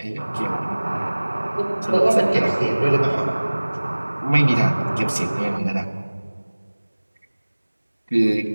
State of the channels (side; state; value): both; inverted; correlation -1.00